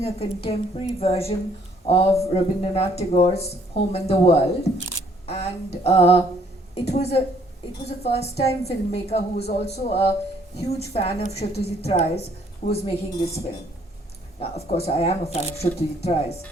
a contemporary version of Rabindranath Tagore's Home in the World, and it was a first-time filmmaker who was also a huge fan of Satyajit Ray's who was making this film. Now, of course, I am a fan of Satyajit Ray's,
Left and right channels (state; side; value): normal; both; correlation 0.64